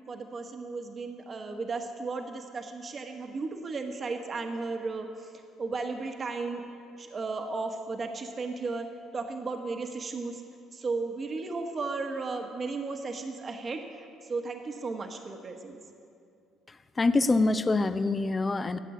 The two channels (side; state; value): both; normal; correlation 0.86